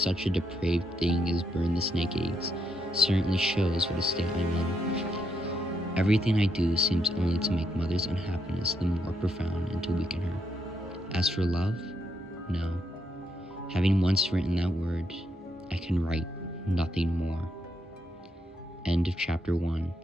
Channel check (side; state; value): both; normal; correlation 0.78